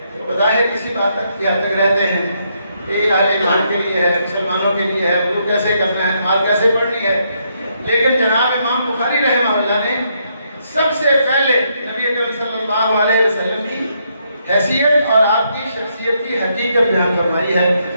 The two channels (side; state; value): both; inverted; correlation -0.76